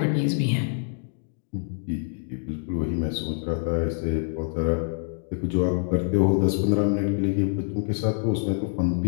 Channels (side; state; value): right; silent; digital silence